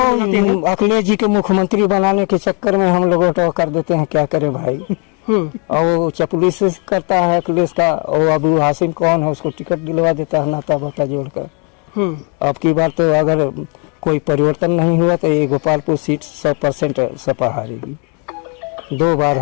हैं। वो अखिलेश जी के मुख्यमंत्री बनाने के चक्कर में हम लोग ऑटो कर देते हैं, क्या करें भाई। और वो चपलूसी करता है अखिलेश का, और अबू हासिम कौन है, उसको टिकट दिलवा देता है नाता बाता जोड़कर। अब की बार तो अगर कोई परिवर्तन नहीं हुआ तो ये गोपालपुर सीट 100% सपा हारेगी। 2 बार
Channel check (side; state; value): right; quieter; 36.3 dB